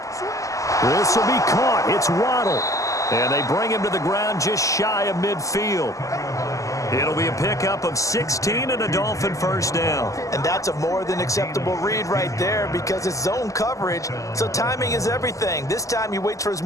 This will be caught. It's Waddle. And they bring him to the ground just shy of midfield. It'll be a pickup of 16 and a Dolphin first down. And that's a more than acceptable read right there because it's zone coverage, so timing is everything. This time he waits for his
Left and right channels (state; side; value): late; right; 0.16 ms